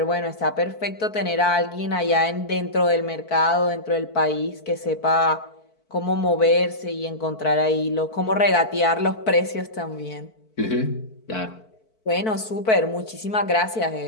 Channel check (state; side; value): late; right; 4.5 ms